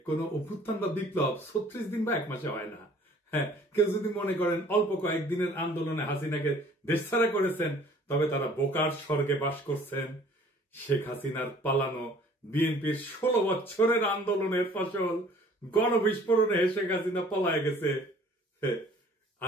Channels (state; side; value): normal; both; correlation 0.53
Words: কোন অভ্যুত্থান বা বিপ্লব 36 দিন বা 1 মাসে হয় না। হ্যাঁ, কেউ যদি মনে করেন অল্প কয়েকদিনের আন্দোলনে হাসিনাকে দেশছাড়া করেছেন, তবে তারা বোকার স্বর্গে বাস করছেন। শেখ হাসিনার পালানো বিএনপির 16 বছরের আন্দোলনের ফসল গণবিস্ফোরণে শেখ হাসিনা পলায় গেছে।